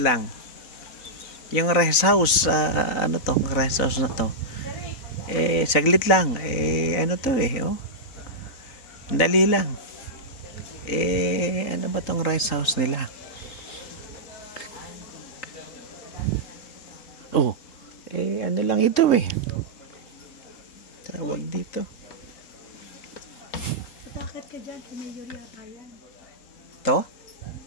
Yung rest house, ano to? Rest house na to. Saglit lang. Ano to oh? Dali lang. Ano ba tong rest house nila? Oh, ano lang ito tawag dito. Bakit ka dyan? Mayor yata yan. To?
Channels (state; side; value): late; right; 3.9 ms